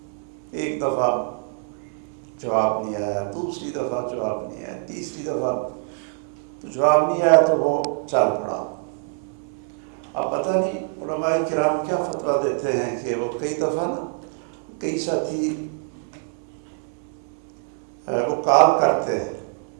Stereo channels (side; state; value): left; silent; 56 dB below the other